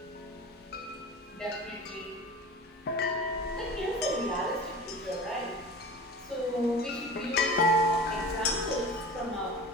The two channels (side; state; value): both; normal; correlation 0.36